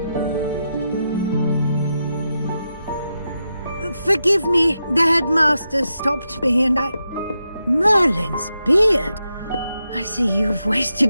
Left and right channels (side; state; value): both; inverted; correlation -0.87